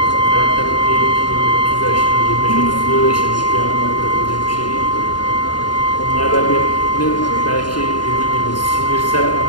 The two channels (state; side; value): late; right; 0.70 ms